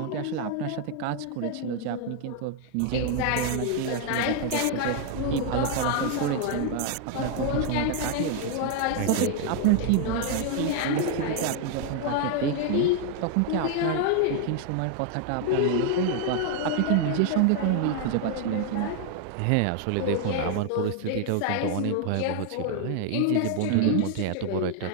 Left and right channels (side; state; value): both; different; correlation 0.00